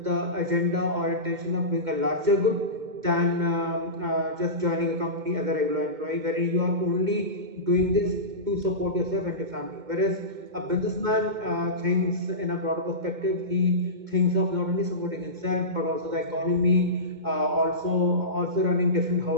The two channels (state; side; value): late; left; 2.1 ms